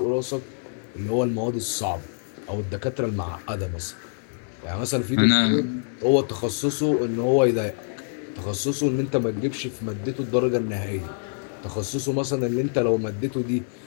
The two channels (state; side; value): silent; right; digital silence